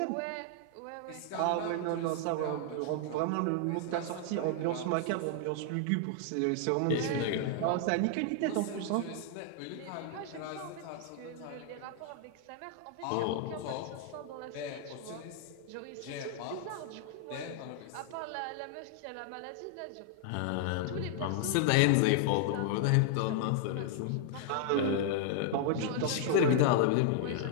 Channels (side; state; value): both; different; correlation -0.01